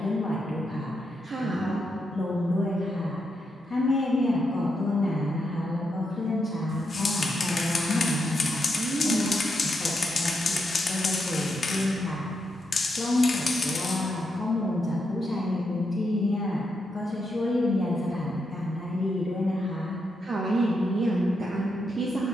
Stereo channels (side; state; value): both; normal; correlation 0.83